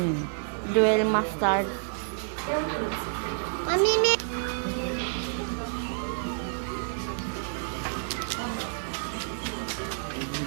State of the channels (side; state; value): left; silent; digital silence